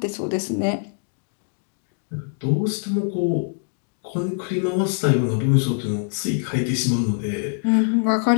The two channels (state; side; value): silent; right; digital silence